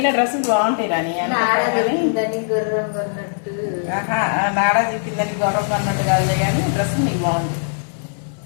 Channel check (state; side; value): silent; right; 65 dB below the other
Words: డ్రెస్సులు బాగుంటాయి రాని. దాన్ని గుర్రం కొన్నట్టు. నాడా చెప్పిందని గౌరవం అన్నట్టు కాదు కానీ డ్రెస్ నీకు బాగుంది.